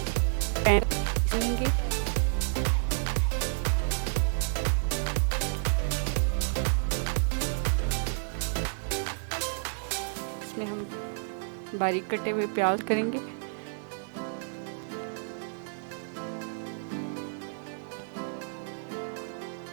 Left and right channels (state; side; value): silent; left; digital silence